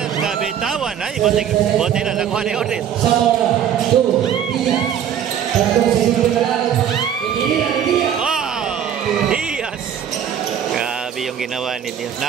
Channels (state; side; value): quieter; left; 9.2 dB